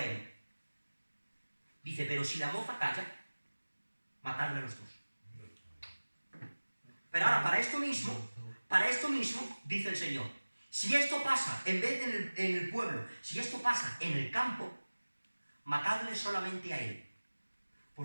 él. Dice, pero si la moza calla, matadlo a los dos. Pero ahora, para esto mismo, dice el Señor, si esto pasa, en vez de en el pueblo, si esto pasa en el campo, matadle solamente a él.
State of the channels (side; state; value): both; inverted; correlation -1.00